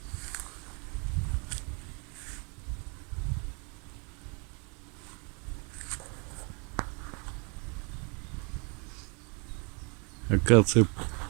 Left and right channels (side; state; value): left; quieter; 33.7 dB